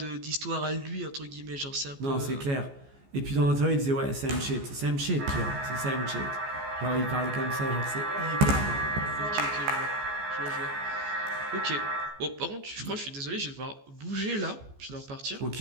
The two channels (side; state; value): left; late; 14 ms